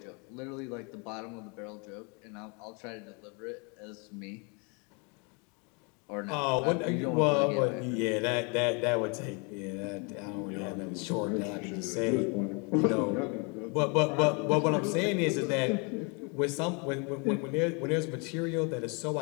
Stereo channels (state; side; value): quieter; right; 33.2 dB